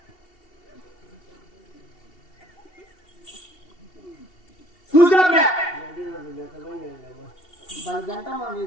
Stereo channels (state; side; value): late; right; 2.7 ms